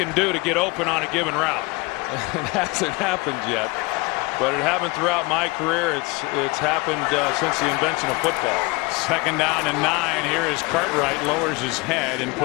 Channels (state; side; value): quieter; right; 25.4 dB